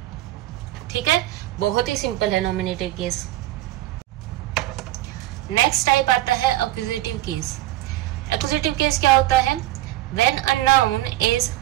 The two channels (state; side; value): quieter; left; 15.8 dB